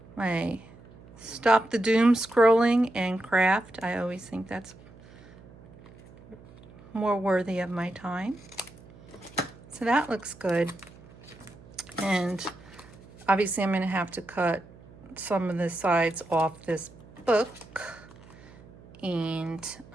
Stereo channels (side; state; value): right; noise; hum, 22 dB below the sound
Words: my stop the doom scrolling and craft. I always think that's more worthy of my time. So that looks good. And obviously I'm going to have to cut some of the sides off this book. And